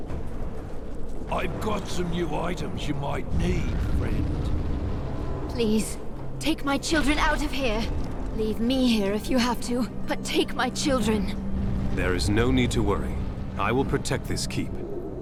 I've got some new items you might need, friend. Please, take my children out of here. Leave me here if you have to, but take my children. There is no need to worry. I will protect this keep,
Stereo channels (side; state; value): both; identical; correlation 1.00